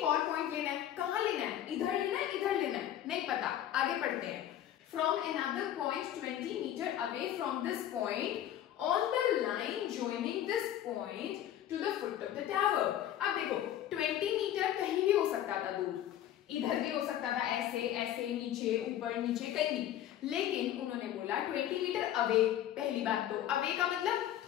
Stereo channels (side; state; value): right; quieter; 11.6 dB